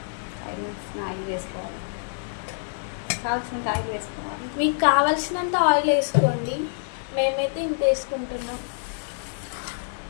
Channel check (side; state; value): right; silent; digital silence